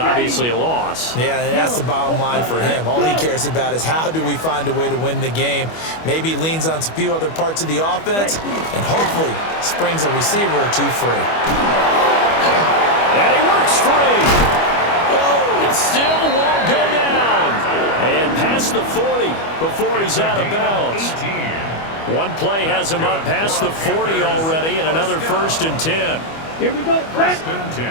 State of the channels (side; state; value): right; late; 25 ms